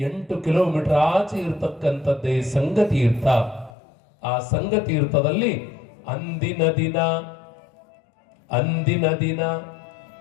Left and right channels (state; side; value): drops out; right; at 3.8 s